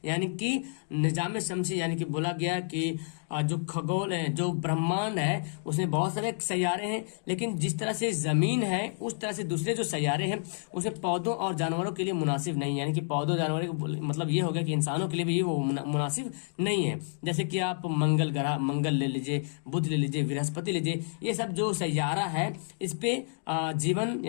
यानी कि निजाम शमसी यानी कि बोला गया कि जो खगोल है, जो ब्रह्मांड है उसमें बहुत सारे सैयारे हैं, लेकिन जिस तरह से जमीन है उस तरह से दूसरे जो सैयारे हैं उसमें पौधों और जानवरों के लिए मुनासिब नहीं है। यानी कि पौधों जानवरों मतलब ये हो गया कि इंसानों के लिए भी वो मुनासिब नहीं है। जैसे कि आप मंगल ले लीजिए, बुध ले लीजिए, बृहस्पति लीजिए, ये सब जो सैयारा है इस पे जीवन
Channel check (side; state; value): right; silent; digital silence